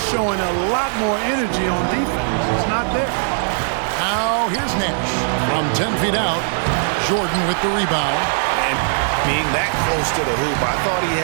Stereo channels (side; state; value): left; silent; 61 dB below the other